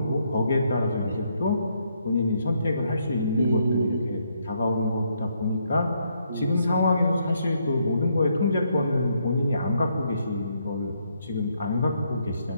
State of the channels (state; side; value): inverted; both; correlation -0.75